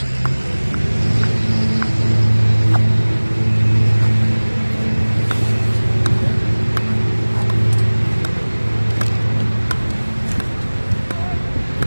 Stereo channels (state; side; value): inverted; both; correlation -1.00